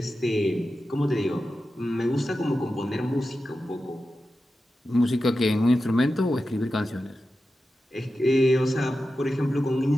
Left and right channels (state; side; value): normal; both; correlation 0.92